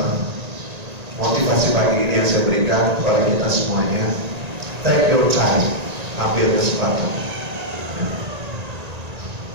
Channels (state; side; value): late; left; 1.9 ms